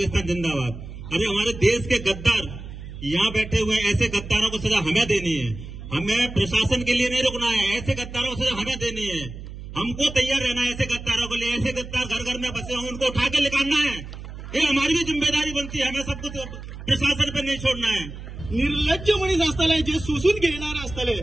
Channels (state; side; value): noise; right; hum, 12 dB below the sound